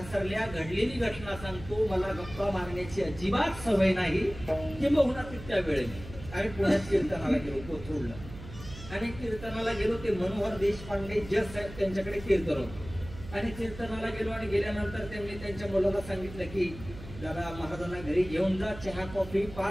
घडलेली घटना सांगतो मला गप्पा मारण्याची अजिबात सवय नाही किंबहुना तितक्या वेळेने आम्ही पुण्यात कीर्तनाला गेलो कोथरूडला आणि कीर्तनाला गेलो ते मनोहर देशपांडे जज साहेब त्यांच्याकडे कीर्तन होतं आणि कीर्तनाला गेलो आणि गेल्यानंतर त्यांनी त्यांच्या मुलाला सांगितलं की दादा महाराजांना घरी घेऊन जा चहा कॉफी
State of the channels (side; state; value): right; noise; hum, 14 dB below the sound